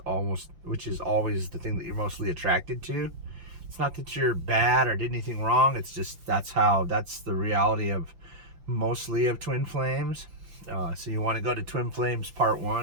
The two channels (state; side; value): late; left; 5.8 ms